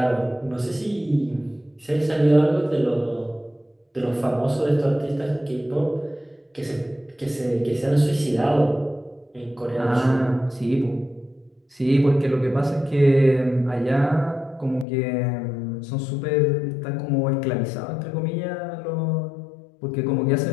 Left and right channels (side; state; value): right; drops out; at 14.9 s